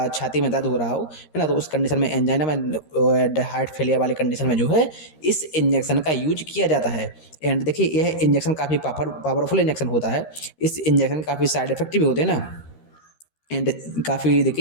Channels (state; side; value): late; right; 13 ms